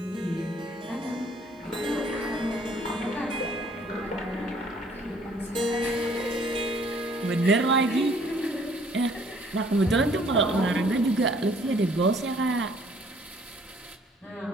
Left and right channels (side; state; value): both; normal; correlation 0.60